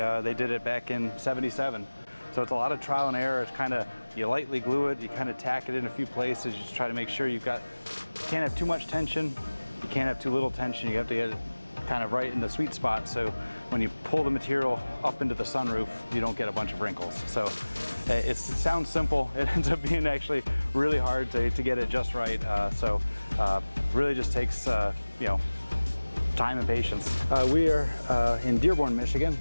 did it back in '77. So it's a lot of trial and error. It's kind of, you lightly glue it, you kind of tack it in a few places, you just try to make sure you can't have too much tension, you can't have too little tension, you have to get it kind of right in the sweet spot, so when you pull the material up into the sunroof, you don't get a bunch of wrinkles. So it sounds simple, it ends up being actually really hard to get it just right. Really just takes time and patience. We are in Dearborn, Michigan,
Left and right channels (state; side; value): inverted; both; correlation -1.00